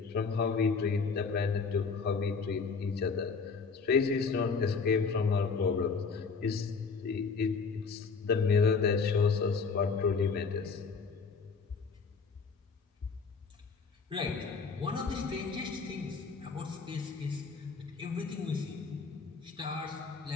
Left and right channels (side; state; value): right; quieter; 5.0 dB